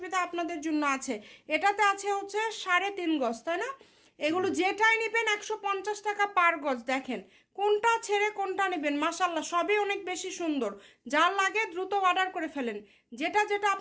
আপনাদের জন্য আছে। এটাতে আছে হচ্ছে 3.5 গজ, তাই না? এগুলো যেটাই নেবেন 150 টাকা পার গজ। দেখেন কোনটা ছেড়ে কোনটা নেবেন, মাশাল্লাহ সবই অনেক বেশি সুন্দর। যার লাগে দ্রুত অর্ডার করে ফেলেন। যেটা যেটা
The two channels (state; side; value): identical; both; correlation 1.00